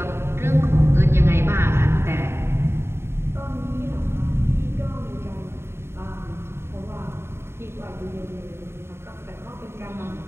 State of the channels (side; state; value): left; late; 0.12 ms